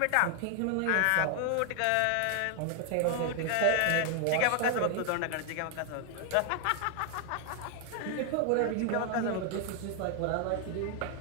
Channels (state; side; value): different; both; correlation 0.00